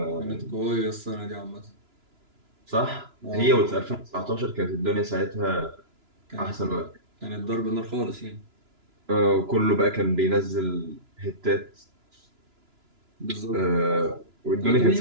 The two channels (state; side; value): late; left; 2.9 ms